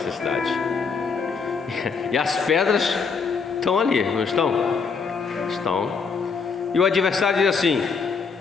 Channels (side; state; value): right; quieter; 5.3 dB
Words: E as pedras estão ali, não estão? Estão. E o adversário diz assim: